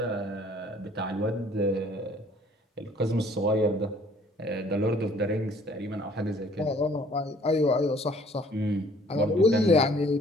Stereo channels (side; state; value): both; normal; correlation 0.57